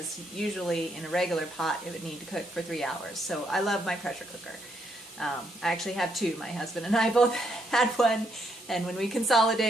usually in a regular pot it would need to cook for 3 hours. So I love my pressure cooker. I actually have two. My husband and I both had one, and when we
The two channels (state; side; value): normal; both; correlation 0.75